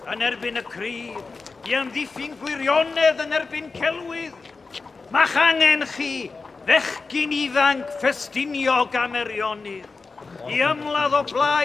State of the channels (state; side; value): quieter; right; 4.2 dB